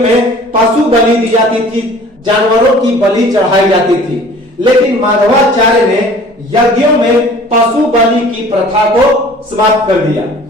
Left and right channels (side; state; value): both; normal; correlation 0.48